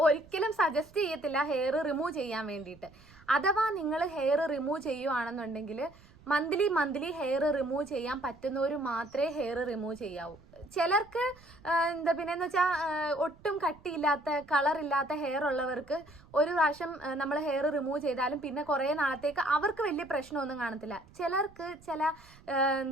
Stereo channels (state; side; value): noise; right; rumble, 24 dB below the sound